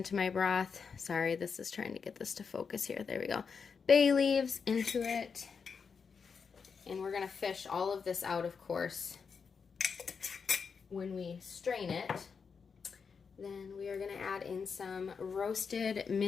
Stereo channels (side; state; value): right; quieter; 5.8 dB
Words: my broth. Sorry, this is trying to get this to focus here. There we go. Bay leaves into it. And we're going to fish all of this out, of course, when we strain it. Then we are going to add in some roasted